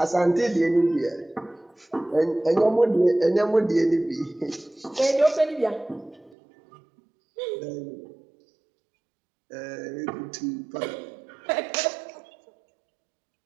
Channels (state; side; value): drops out; left; at 6.4 s